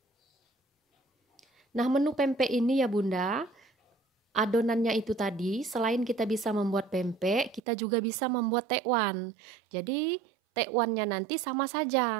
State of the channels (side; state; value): left; drops out; at 7.6 s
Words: Nah, menu pempek ini ya Bunda, adonannya itu tadi, selain kita bisa membuat pempek, kita juga bisa membuat tekwan. Jadi, tekwannya nanti sama